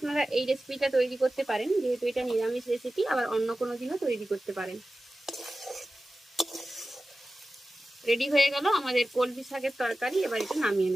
এই রেসিপিটা তৈরি করতে পারেন, যেহেতু এটা নিরামিষ রেসিপি, আবার অন্য কোনো দিনও তৈরি করতে পারেন। রেডি হয়ে গেল আমাদের কলমি শাকের তরকারি। এবার এটা নামিয়ে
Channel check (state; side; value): normal; both; correlation 0.94